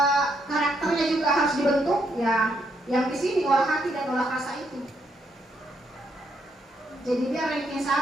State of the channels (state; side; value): normal; both; correlation 0.76